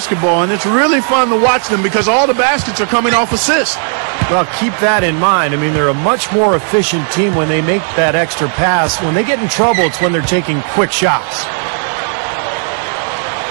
and it's really fun to watch them because all the baskets are coming off assists. Well, keep that in mind. I mean, they're a much more efficient team when they make that extra pass. When they get in trouble, it's when they're taking quick shots.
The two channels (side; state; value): left; silent; 58 dB below the other